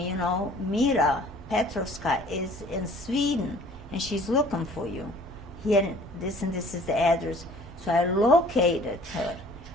Mira Petrovska is in Sweden and she's looking for you. Here, this and this is the address. So I located her.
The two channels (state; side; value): normal; both; correlation 0.52